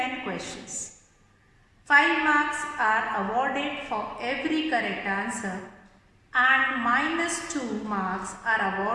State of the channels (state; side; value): identical; both; correlation 1.00